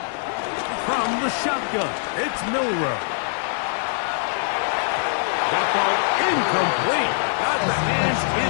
From the shotgun, it's Milroe. That ball incomplete. Got the hands in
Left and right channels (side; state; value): right; silent; digital silence